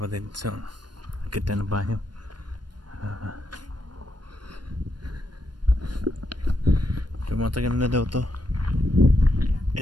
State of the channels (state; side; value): late; left; 0.71 ms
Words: So, kita na ba yun? Tumatagal na daw to.